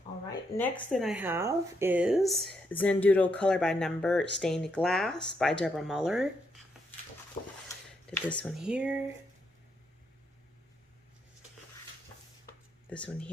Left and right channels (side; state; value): both; normal; correlation 0.78